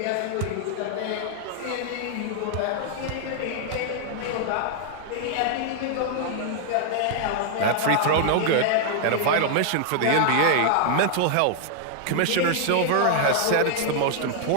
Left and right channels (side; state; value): both; different; correlation 0.00